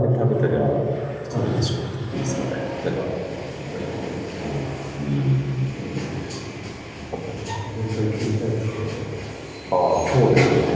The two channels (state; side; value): identical; both; correlation 1.00